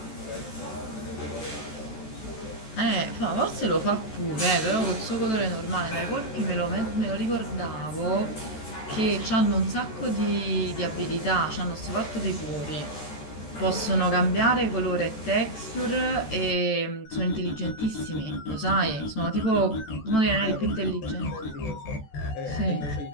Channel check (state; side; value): late; right; 14 ms